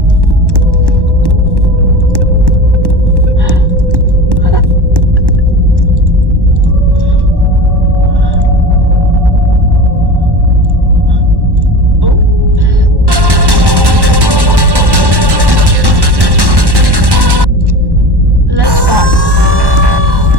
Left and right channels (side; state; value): left; late; 1.1 ms